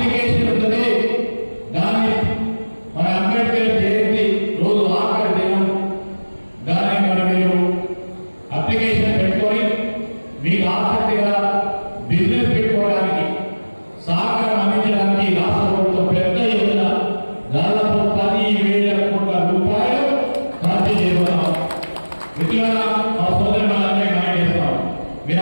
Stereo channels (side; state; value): both; inverted; correlation -1.00